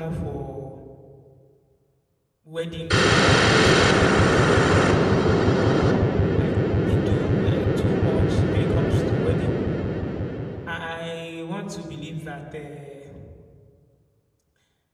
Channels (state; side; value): identical; both; correlation 1.00